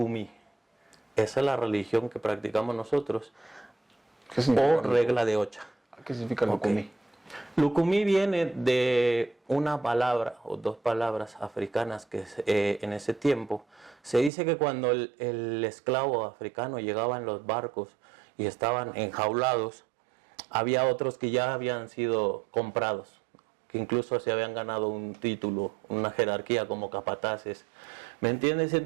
Esa es la religión que practicamos nosotros, o regla de Ocha. ¿Qué significa Lucumí? Lucumí viene de una palabra o dos palabras africanas que en ese tiempo se dice que cuando el esclavo africano llegaba en los barcos y estaban enjaulados, había otros que ya habían sido comprados, que incluso se habían ganado un título, una jerarquía como capataces. ¿Me entiendes?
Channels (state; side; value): drops out; left; at 14.3 s